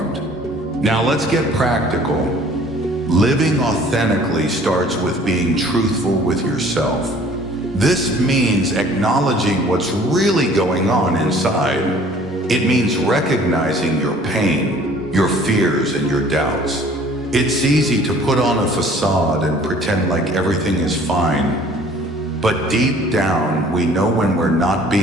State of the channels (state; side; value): normal; both; correlation 0.53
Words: Now let's get practical. Living authentically starts with being truthful with yourself. This means acknowledging what's really going on inside. It means recognizing your pain, your fears, and your doubts. It's easy to put on a facade and pretend like everything is fine, but deep down, we know when we're not